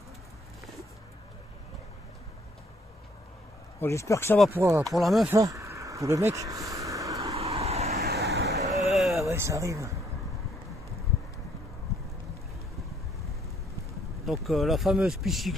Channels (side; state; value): both; normal; correlation 0.66